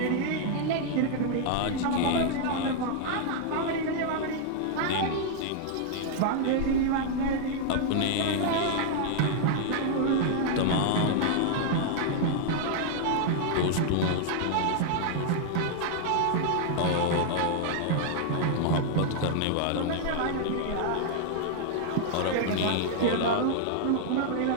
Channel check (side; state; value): both; different; correlation 0.00